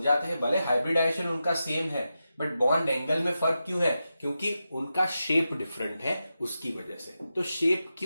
हैं भले हाइब्रिडाइजेशन उनका सेम है, बट बॉन्ड एंगल में फर्क क्यों है, क्योंकि उनका शेप डिफरेंट है, उसकी वजह से। तो शेप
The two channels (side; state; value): both; inverted; correlation -0.90